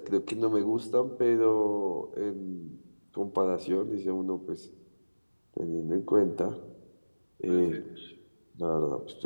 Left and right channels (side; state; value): both; inverted; correlation -1.00